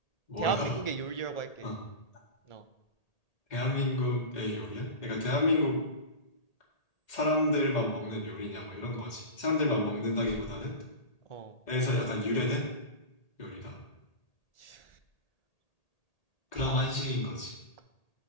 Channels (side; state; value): right; late; 1.8 ms